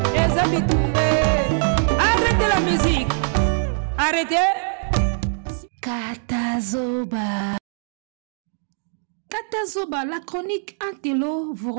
Arrêtez la musique. Arrêtez. Katazoba. Katazoba, la chronique Antello vous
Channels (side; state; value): left; silent; digital silence